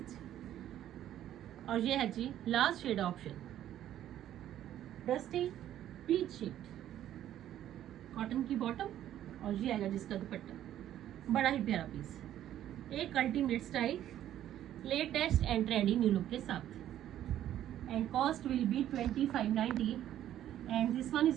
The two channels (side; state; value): left; quieter; 11.8 dB